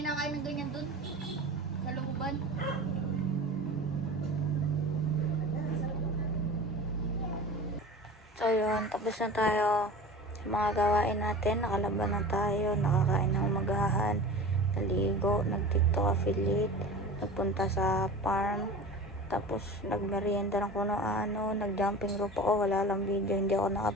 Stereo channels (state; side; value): normal; both; correlation 0.35